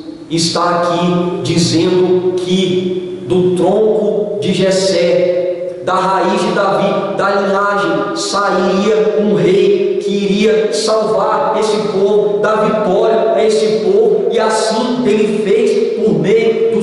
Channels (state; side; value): identical; both; correlation 1.00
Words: está aqui dizendo que do tronco de Jessé, da raiz de Davi, da linhagem, sairia um rei que iria salvar esse povo, dar vitória a esse povo, e assim ele fez por meio do